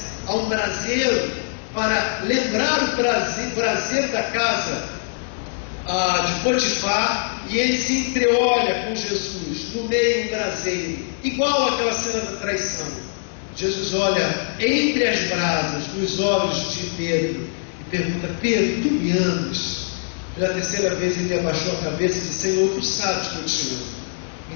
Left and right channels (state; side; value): silent; right; digital silence